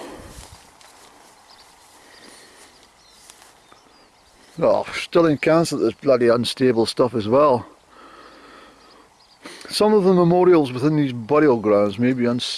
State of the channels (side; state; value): both; identical; correlation 1.00